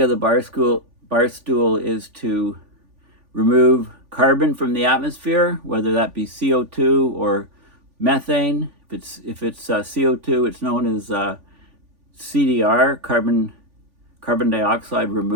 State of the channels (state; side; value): late; left; 3.5 ms